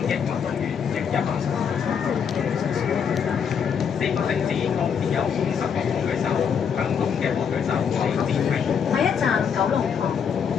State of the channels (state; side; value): quieter; right; 7.2 dB